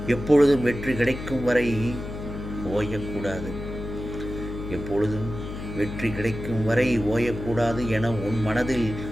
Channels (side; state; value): left; noise; hum, 8 dB below the sound